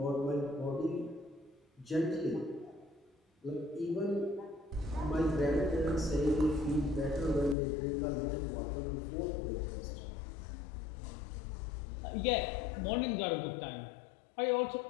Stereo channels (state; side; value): drops out; right; at 7.6 s